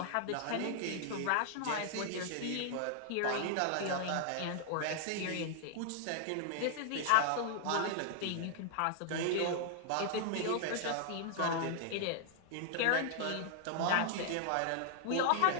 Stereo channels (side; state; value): both; different; correlation 0.00